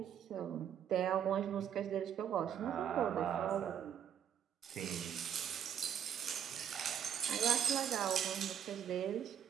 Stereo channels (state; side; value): quieter; left; 8.9 dB